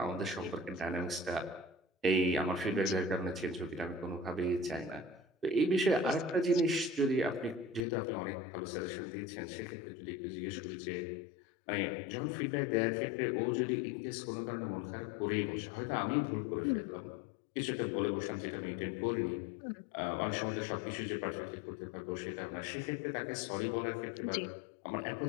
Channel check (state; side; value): drops out; right; at 7.9 s